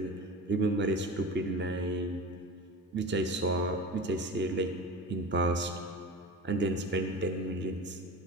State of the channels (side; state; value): both; normal; correlation 0.32